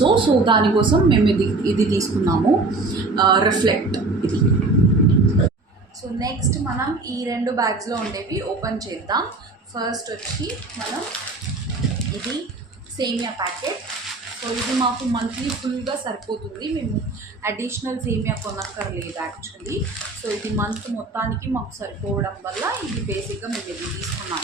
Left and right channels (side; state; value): left; quieter; 3.4 dB